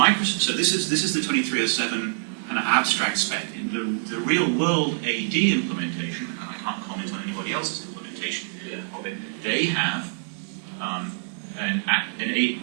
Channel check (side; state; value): left; silent; digital silence